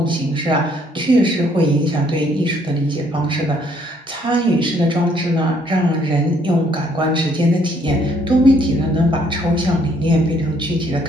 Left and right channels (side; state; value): both; normal; correlation 0.66